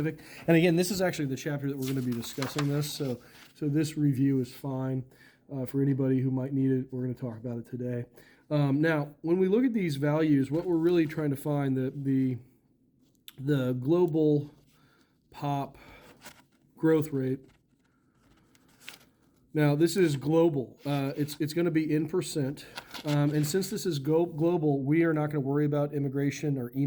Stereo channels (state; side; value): identical; both; correlation 1.00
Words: And again, this is actually the chapter that we're going to be discussing this. So this review is fine for anybody who might need it. We're going to talk about it today. Now, when we look at these values, what we're really trying to find, the global pop growth rate. Now, this is global. It's going to be in percent. And since this is global, we are not going to worry about immigration or